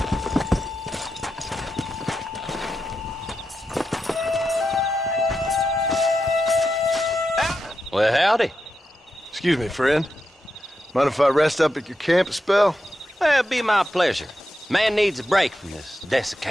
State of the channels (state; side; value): normal; both; correlation 0.87